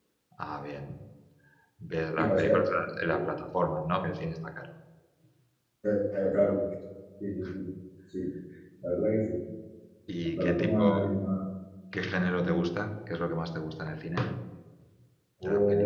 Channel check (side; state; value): both; identical; correlation 1.00